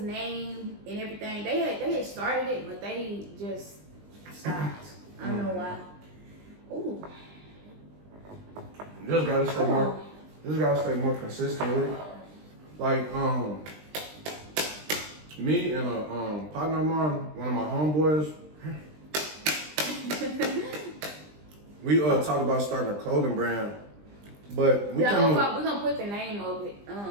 and everything. They had started it, but they just stopped. I don't know why. Ooh. Just gotta stay more. Just gotta stay more consistent with it. Like me and a partner of mine, one of my homeboys. We talked about starting a clothing brand, but we're gonna put the name of it,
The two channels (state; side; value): late; left; 20 ms